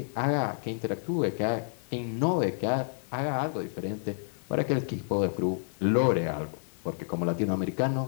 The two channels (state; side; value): silent; right; digital silence